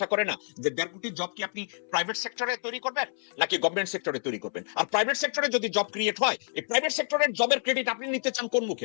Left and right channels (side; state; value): right; silent; 59 dB below the other